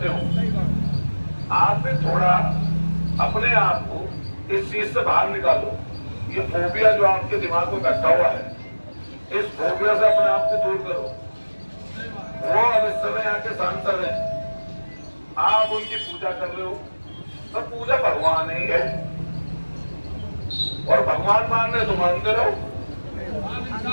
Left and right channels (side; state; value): both; inverted; correlation -1.00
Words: हो। आप भी थोड़ा अपने आप को इस चीज से बाहर निकालो। ये फोबिया जो आपके दिमाग में बैठा हुआ है, इस फोबिया से अपने आप को दूर करो। वो अब इस समय यहाँ के सांसद हैं, आप उनकी पूजा कर रहे हो, तो पूजा भगवान ही है, और भगवान मान रहे तो मानते रहो,